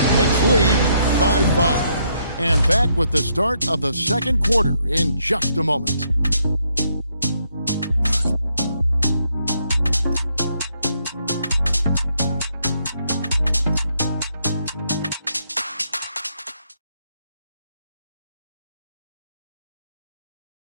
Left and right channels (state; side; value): inverted; both; correlation -0.74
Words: Knicks lead by 5. And back with the start of the second quarter in just a moment.